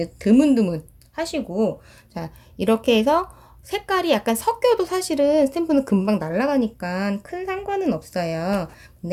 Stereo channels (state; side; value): identical; both; correlation 1.00